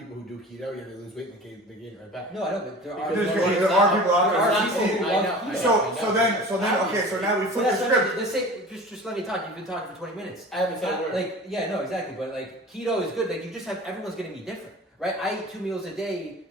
who do keto, yeah, they lose weight and they gain it right back. No, I know, but there are. Because There are people out There there. are people who I love know, keto. I know. So then, okay, so now we So flip that's the what I mean. script. Let's say, just let me talk. You've been talking for 20 minutes. I haven't said a word. Like, yeah, no, exactly. But like, keto is good. Like, you just have everyone's gonna be different, right? I eat 2 meals a day,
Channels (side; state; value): both; normal; correlation 0.39